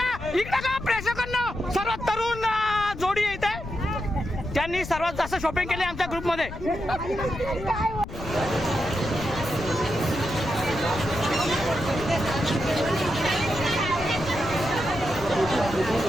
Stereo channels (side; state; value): left; noise; rumble, 10 dB below the sound